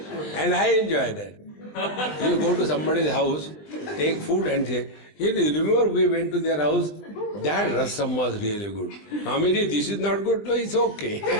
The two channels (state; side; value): late; right; 20 ms